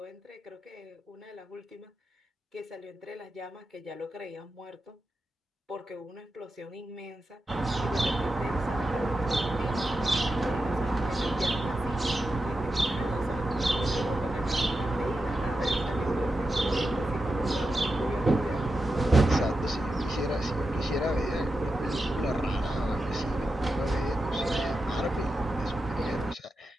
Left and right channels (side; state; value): both; normal; correlation 0.89